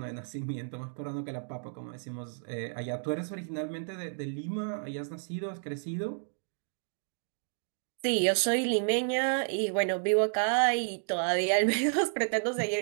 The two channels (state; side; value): silent; left; digital silence